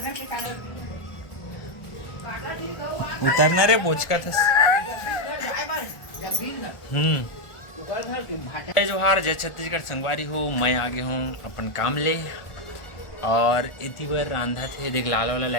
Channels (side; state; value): right; late; 1.4 ms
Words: उतरना रे बोचका था। जोहार जय छत्तीसगढ़ संगवारी हो, मैं आ गया हूँ अपन काम ले। और इतनी बार रांधा थे, देख लाल वाला